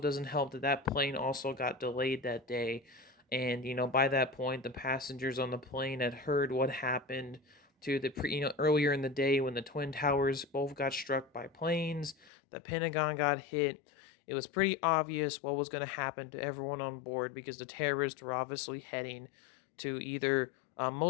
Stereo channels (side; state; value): right; drops out; at 12.3 s